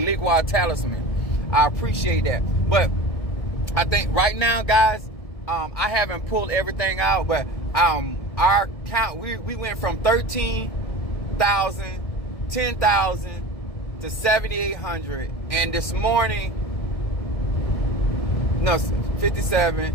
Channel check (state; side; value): late; right; 1.6 ms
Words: talisman. I appreciate that. But I think right now, guys, I haven't pulled everything out, but our count, we went from 13,000, 10,000 to 7,800, and this morning, no,